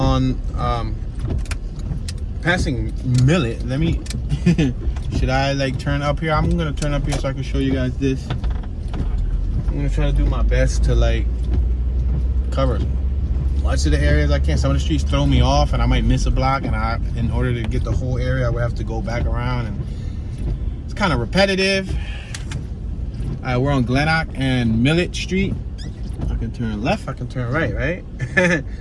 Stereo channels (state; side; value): identical; both; correlation 1.00